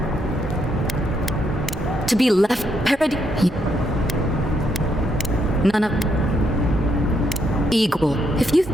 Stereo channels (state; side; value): normal; both; correlation 0.76